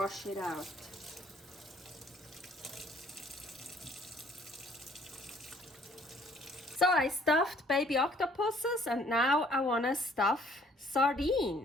it out. So I stuffed baby octopuses, and now I want to stuff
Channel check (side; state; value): both; normal; correlation 0.60